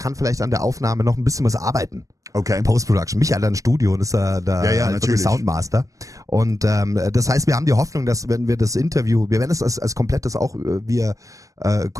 vielleicht an der Aufnahme noch ein bisschen was arbeiten. Okay. Post-Production. Micha hat ein Studio und ist da natürlich Soundmaster. Und das heißt, wir haben die Hoffnung, dass wenn wir das Interview, wir werden es als komplettes auch via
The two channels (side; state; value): left; late; 0.16 ms